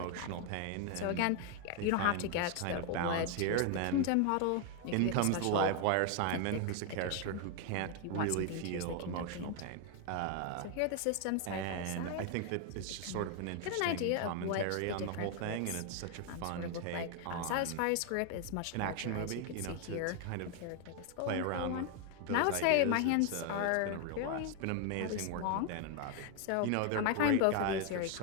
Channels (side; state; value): both; different; correlation 0.01